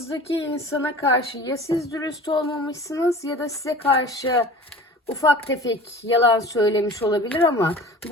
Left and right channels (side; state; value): both; normal; correlation 0.41